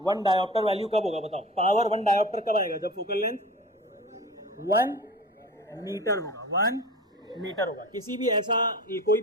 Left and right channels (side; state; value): both; normal; correlation 0.36